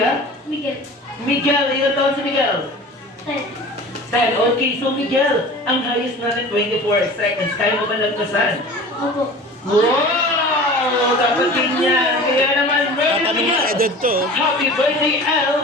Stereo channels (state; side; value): normal; both; correlation 0.39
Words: Miguel. Miguel, ilan taon si Miguel? 10. 10. Okay, so Miguel, ang highest natin 24 seconds. Kaya mo ba lagpasan? Opo. Wow! Dapat ganyan. Kaya naman, ready na Tatanong Miguel. ng edad to. Happy birthday,